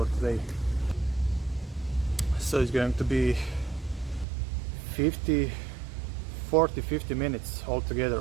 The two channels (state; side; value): drops out; left; at 4.2 s